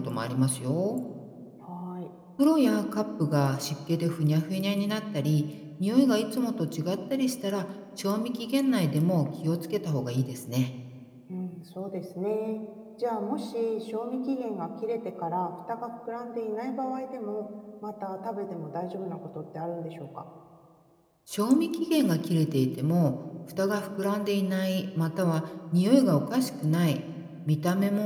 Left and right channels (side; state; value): both; identical; correlation 1.00